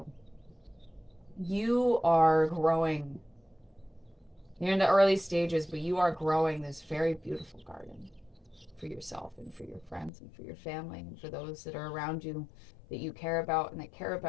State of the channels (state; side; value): drops out; right; at 10.1 s